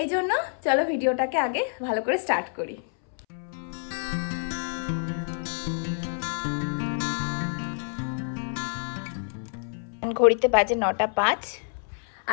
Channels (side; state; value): right; silent; 60 dB below the other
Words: জন্য চলো ভিডিওটাকে আগে ভালো করে স্টার্ট করি। ঘড়িতে বাজে 9:05